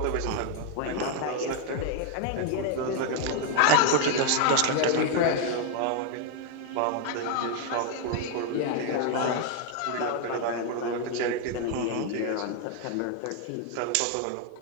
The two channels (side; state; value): both; different; correlation 0.00